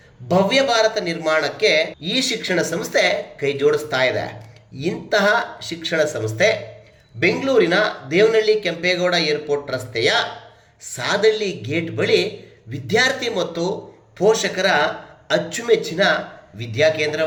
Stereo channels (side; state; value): both; identical; correlation 1.00